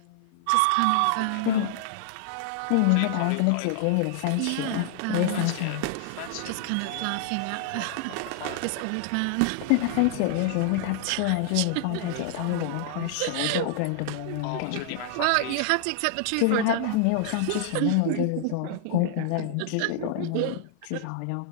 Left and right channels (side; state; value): both; different; correlation -0.01